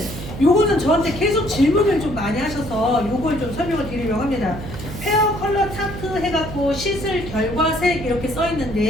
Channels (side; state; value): right; noise; hum, 10 dB below the sound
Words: 요거는 저한테 계속 질문을 좀 많이 하셔서 요걸 좀 설명을 드리려고 합니다. 페어 컬러 차트 해갖고 시술 결과색 이렇게 써